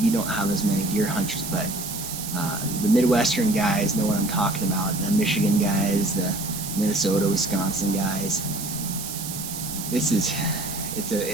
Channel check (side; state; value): right; noise; hiss, 7 dB below the sound